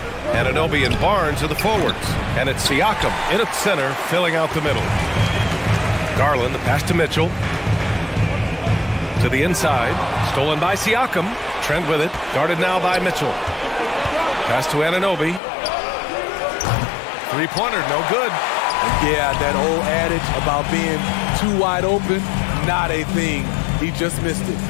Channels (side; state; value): right; drops out; at 15.4 s